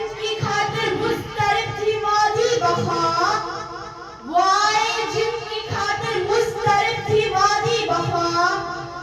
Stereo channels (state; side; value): identical; both; correlation 1.00